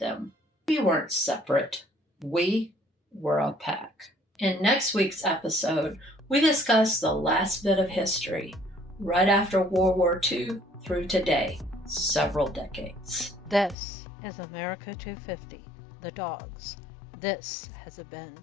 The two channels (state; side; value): drops out; right; at 13.8 s